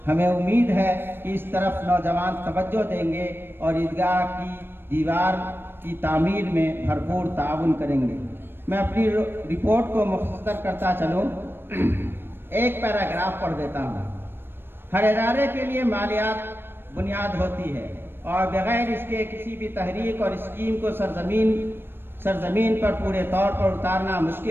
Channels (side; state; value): left; late; 0.10 ms